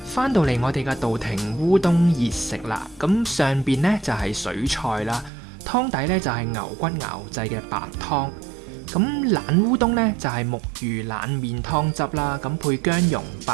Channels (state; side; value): drops out; left; at 5.3 s